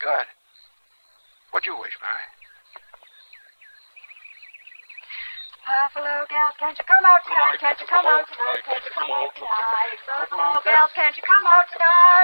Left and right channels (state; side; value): inverted; both; correlation -1.00